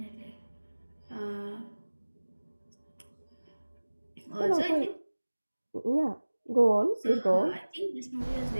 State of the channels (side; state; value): both; inverted; correlation -1.00